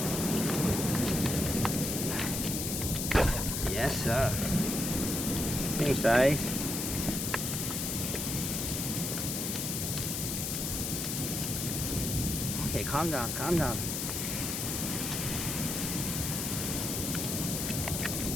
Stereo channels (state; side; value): noise; left; hiss, 2 dB below the sound